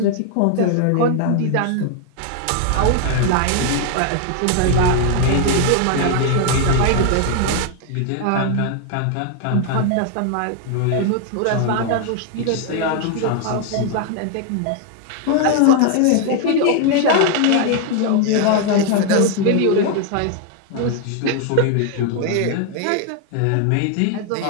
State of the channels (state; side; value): different; both; correlation 0.00